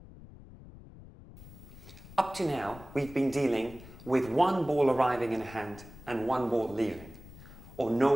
Up to now, we've been dealing with 1 ball arriving in a hand and 1 ball leaving, or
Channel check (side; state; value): left; noise; rumble, 18 dB below the sound